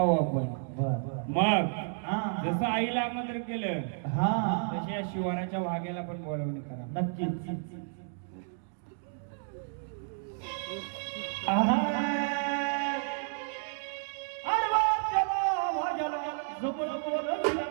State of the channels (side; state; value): left; silent; digital silence